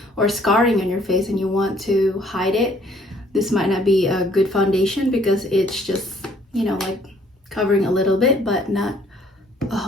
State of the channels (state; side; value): normal; both; correlation 0.62